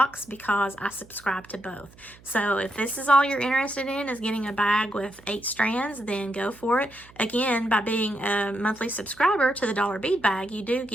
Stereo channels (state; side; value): noise; right; hum, 24 dB below the sound